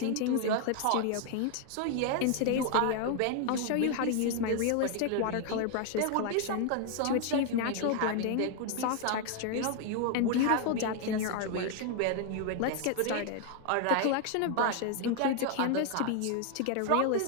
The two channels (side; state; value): both; different; correlation 0.00